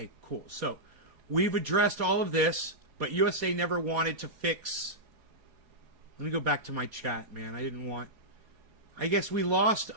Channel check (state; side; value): late; left; 4.2 ms